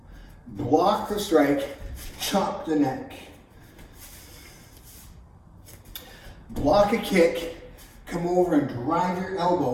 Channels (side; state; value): both; identical; correlation 1.00